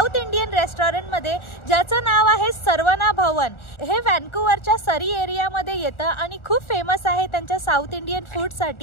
इंडियन रेस्टॉरंटमध्ये, ज्याचं नाव आहे सर्वना भवन. हे व्हॅन्कुव्हरच्या सरी एरियामध्ये येतं आणि खूप फेमस आहे त्यांच्या साऊथ इंडियन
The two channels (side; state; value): right; late; 1.4 ms